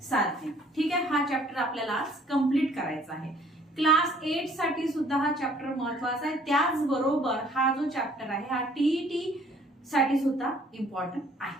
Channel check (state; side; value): normal; both; correlation 0.59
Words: साधने। ठीक आहे, हा चॅप्टर आपल्याला आज कंप्लीट करायचा आहे। क्लास 8 साठी सुद्धा हा चॅप्टर महत्त्वाचा आहे, त्याचबरोबर हा जो चॅप्टर आहे हा टीईटी साठी सुद्धा इम्पॉर्टंट